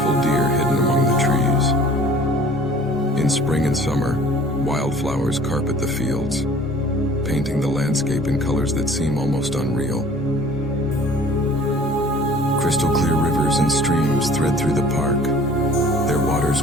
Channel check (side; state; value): both; normal; correlation 0.49